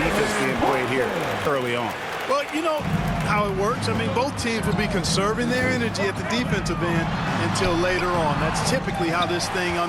being played here early on. Well, you know how it works. I mean, both teams will be conserving their energy at the defensive end until later on. That's typically how this thing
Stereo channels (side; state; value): both; identical; correlation 1.00